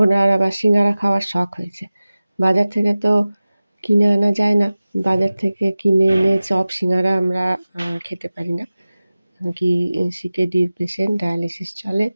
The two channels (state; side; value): inverted; both; correlation -0.97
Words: ওনার আবার সিঙ্গারা খাওয়ার শখ হয়েছে। বাজার থেকে তো কিনে আনা যায় না, বাজার থেকে কিনে এনে চপ সিঙ্গারা আমরা খেতে পারি না, কি সিকেডির পেশেন্ট, ডায়ালিসিস চলে,